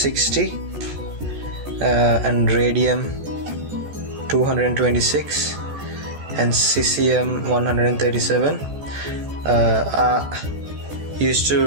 and radium 226 and cesium 137 are used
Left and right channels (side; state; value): left; late; 14 ms